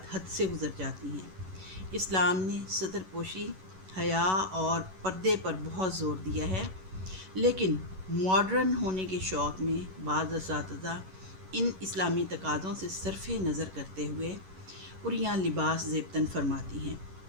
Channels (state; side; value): late; left; 11 ms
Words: حد سے گزر جاتی ہیں۔ اسلام نے ستر پوشی، حیا اور پردے پر بہت زور دیا ہے، لیکن ماڈرن ہونے کے شوق میں بعض اساتذہ ان اسلامی تقاضوں سے صرف نظر کرتے ہوئے عریاں لباس زیبتاً فرماتی ہیں۔